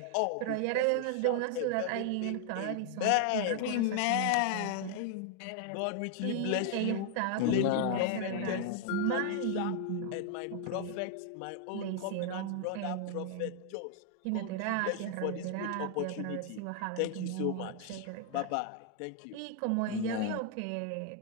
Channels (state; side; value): different; both; correlation 0.00